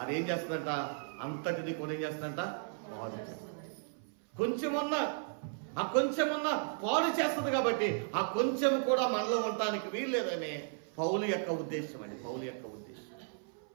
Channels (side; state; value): left; silent; 54 dB below the other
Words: అదేం చేస్తుందంట, అంతటిని కూడా ఏం చేస్తుందంట, పాడు చేస్తుంది. కొంచెమన్నా పాడు చేస్తుంది. కాబట్టి ఆ కొంచెం కూడా మనలో ఉండటానికి వీల్లేదనే పౌలు యొక్క ఉద్దేశం అండి, పౌలు యొక్క ఉద్దేశం.